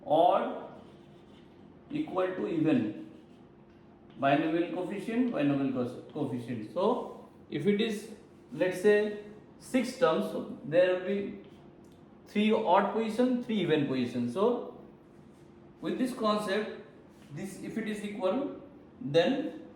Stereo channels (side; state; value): both; identical; correlation 1.00